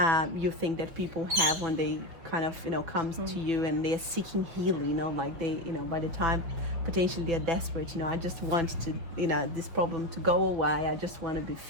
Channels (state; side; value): late; left; 5.9 ms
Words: you think that people have when they kind of, you know, comes to you and they're seeking healing, you know, like they, you know, by the time potentially they're desperate, you know, I just want to, you know, this problem to go away, I just want to be